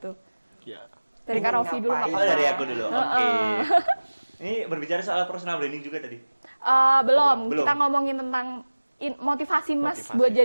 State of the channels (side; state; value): both; inverted; correlation -1.00